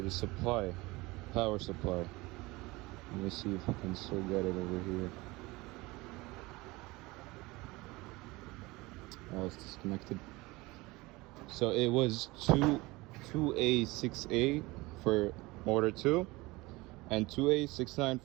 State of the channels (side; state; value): left; quieter; 22.0 dB